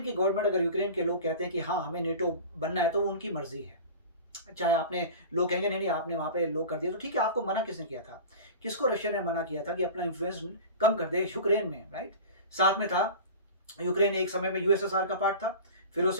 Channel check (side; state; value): both; inverted; correlation -0.35